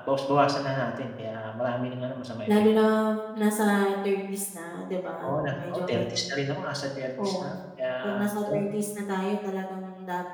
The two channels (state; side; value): identical; both; correlation 1.00